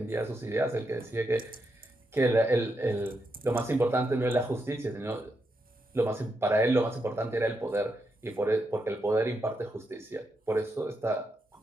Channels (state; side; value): normal; both; correlation 0.83